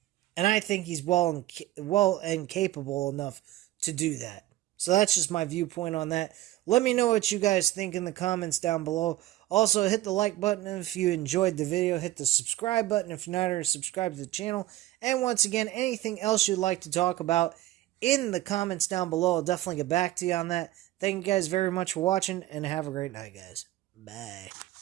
And I think he's well and capable enough to do that. So that's just my viewpoint on that. Let me know what you guys think in the comments down below. Also, hit the like button if you enjoyed the video. Hit the subscribe button if you're not already subscribed to the channel. And once again, anything else you'd like to talk about in the comments down below, I'll definitely get back to you on that. Thank you guys very much for watching, and have a great night, guys. Bye.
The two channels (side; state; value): left; quieter; 15.2 dB